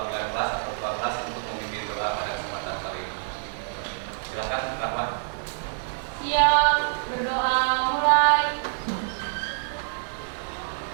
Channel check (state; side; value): silent; left; 60 dB below the other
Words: kelas atau ketua kelas untuk memimpin doa pada kesempatan kali ini. Silakan, Rahmat. Siap, berdoa mulai.